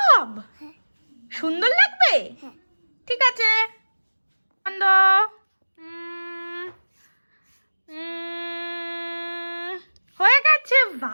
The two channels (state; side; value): inverted; both; correlation -1.00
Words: সুন্দর লাগবে? হ্যাঁ। ঠিক আছে, বন্ধ। হয়ে গেছে।